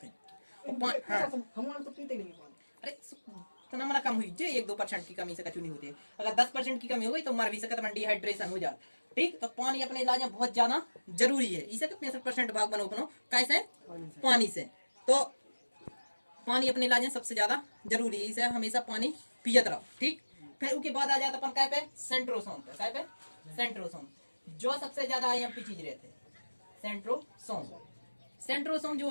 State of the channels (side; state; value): both; inverted; correlation -1.00